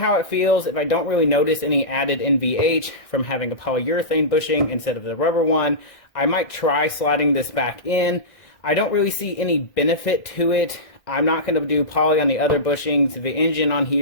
it feels. If I don't really notice any added NVH from having a polyurethane bushing instead of the rubber one, I might try sliding this back in. I don't really see any benefit to it. I'm not going to do poly on the other bushings. The engine on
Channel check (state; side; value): late; right; 1.6 ms